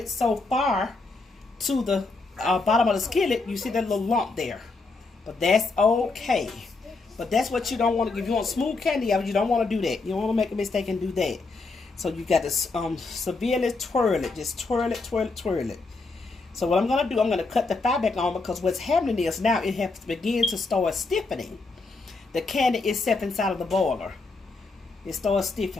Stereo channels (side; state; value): right; quieter; 3.7 dB